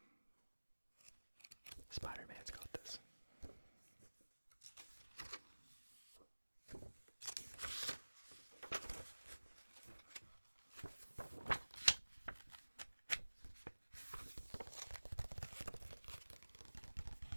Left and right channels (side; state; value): both; inverted; correlation -1.00